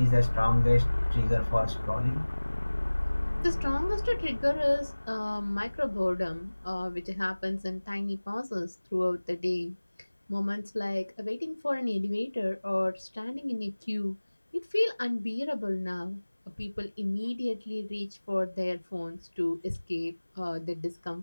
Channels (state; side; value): inverted; both; correlation -1.00